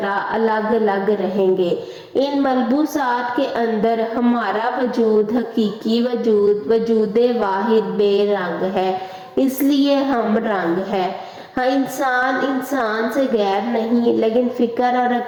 الگ الگ رہیں گے۔ ان ملبوسات کے اندر ہمارا وجود، حقیقی وجود، وجود واحد بے رنگ ہے، اس لیے ہم رنگ ہے۔ ہاں، انسان سے غیر نہیں، لیکن فکر اور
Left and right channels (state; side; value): identical; both; correlation 1.00